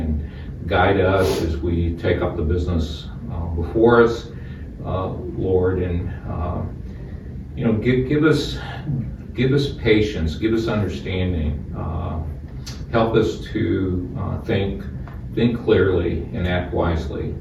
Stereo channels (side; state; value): both; identical; correlation 1.00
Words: guide us as we take up the business before us, Lord, and give us patience, give us understanding, help us to think clearly and act wisely